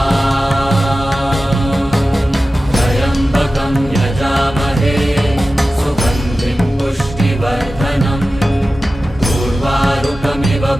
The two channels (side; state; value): both; normal; correlation 0.95